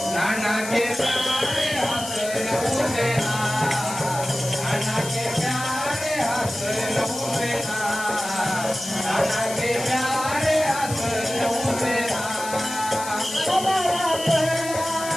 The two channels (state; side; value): noise; left; hiss, 9 dB below the sound